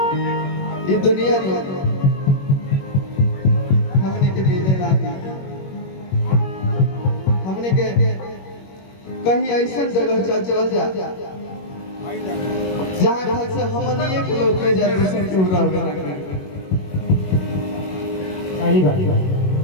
ये दुनिया में हमने के मिले ना, हमने के कहीं ऐसा जगह चल जा जहाँ घर से हमने एक लोग के जनरेशन के पूरा होगा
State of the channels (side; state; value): right; late; 21 ms